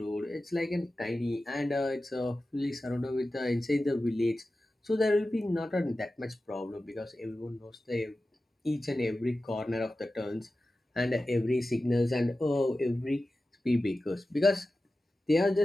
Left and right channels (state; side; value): normal; both; correlation 0.94